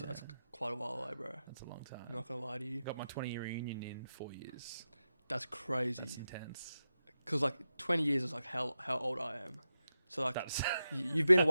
quite a while away, bro. That's a long time. I'm not gonna lie to you. Got my 20-year reunion in 4 years. That's crazy. That's intense. Because 20 years is how old I am. So you've been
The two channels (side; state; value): both; inverted; correlation -0.90